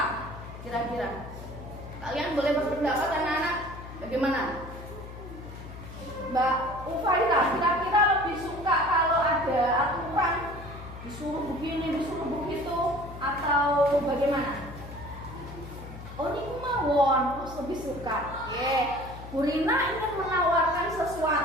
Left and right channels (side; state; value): left; noise; hum, 13 dB below the sound